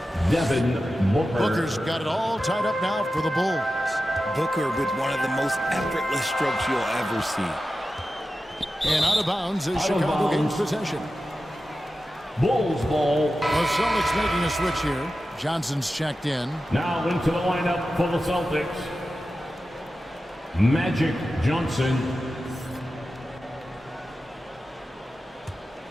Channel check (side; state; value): both; normal; correlation 0.93